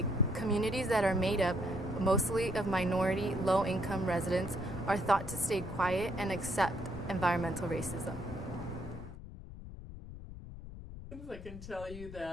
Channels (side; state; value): left; noise; rumble, 12 dB below the sound